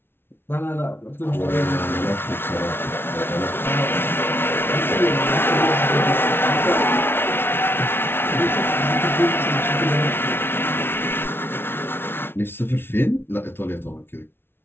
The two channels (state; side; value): late; right; 0.11 ms